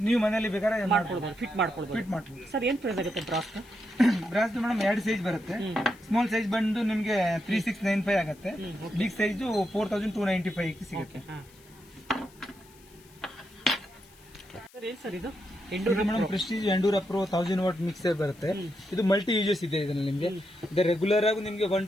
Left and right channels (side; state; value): left; noise; hiss, 26 dB below the sound